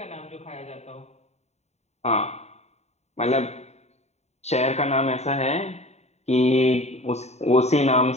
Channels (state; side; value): late; right; 0.32 ms